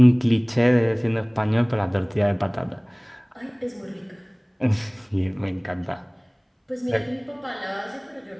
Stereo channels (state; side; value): identical; both; correlation 1.00